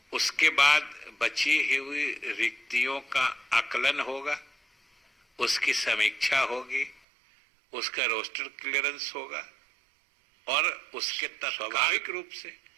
उसके बाद बची हुई रिक्तियों का आकलन होगा, उसकी समीक्षा होगी, उसका रोस्टर क्लियरेंस होगा और उसके स्वाभाविक रूप से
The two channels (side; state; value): left; drops out; at 7.0 s